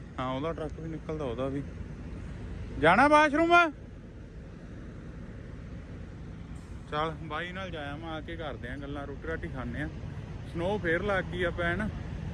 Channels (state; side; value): identical; both; correlation 1.00